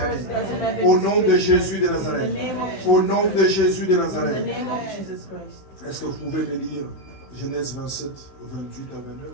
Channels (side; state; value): right; late; 16 ms